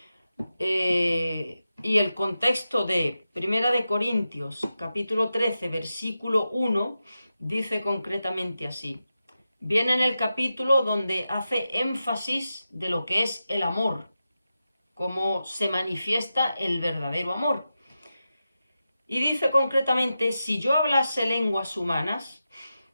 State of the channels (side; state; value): both; inverted; correlation -0.91